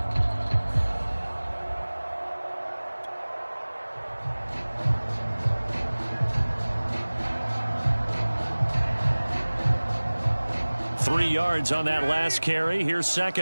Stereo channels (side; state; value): both; inverted; correlation -1.00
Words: Yards on that last carry. Here's